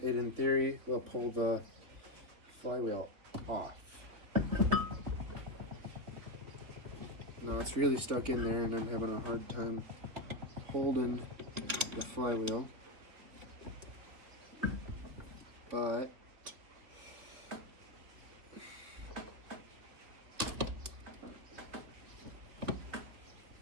theory will pull the flywheel off. Now it's really stuck in there and I'm having a hard time holding the flywheel, but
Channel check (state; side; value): late; left; 3.5 ms